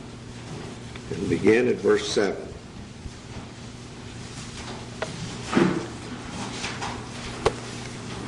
and begin at verse 7.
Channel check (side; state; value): both; identical; correlation 1.00